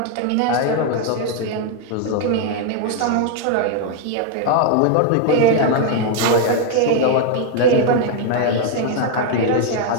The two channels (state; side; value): different; both; correlation 0.00